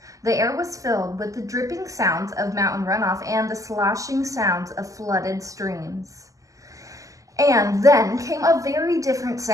The air was filled with the dripping sounds of mountain runoff and the sloshing sounds of flooded streams. And then came a very different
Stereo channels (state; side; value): late; left; 0.16 ms